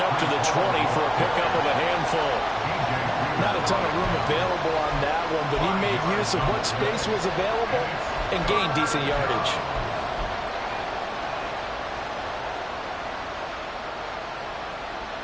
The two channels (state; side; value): identical; both; correlation 1.00